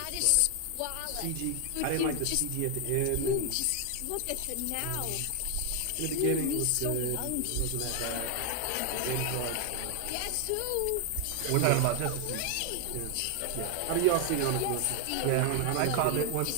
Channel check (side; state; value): both; different; correlation 0.00